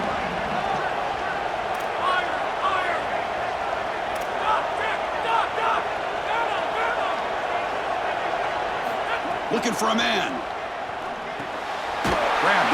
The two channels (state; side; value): identical; both; correlation 1.00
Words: Looking for a man. Grab